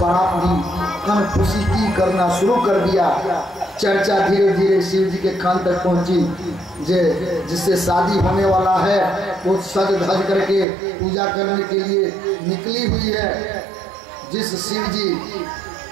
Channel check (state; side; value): drops out; left; at 10.7 s